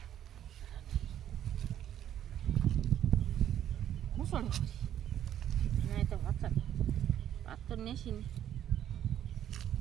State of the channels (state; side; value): quieter; left; 10.7 dB